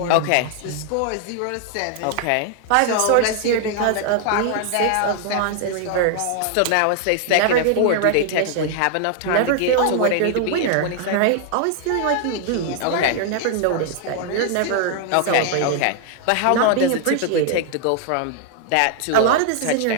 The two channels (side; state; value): both; different; correlation 0.00